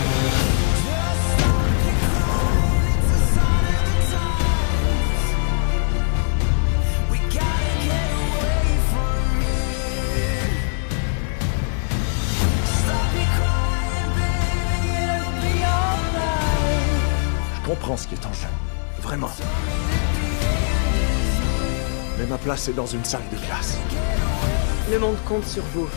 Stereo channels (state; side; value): silent; right; digital silence